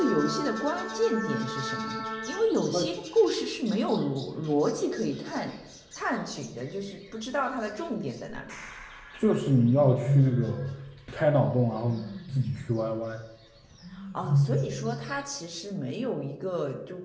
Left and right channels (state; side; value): identical; both; correlation 1.00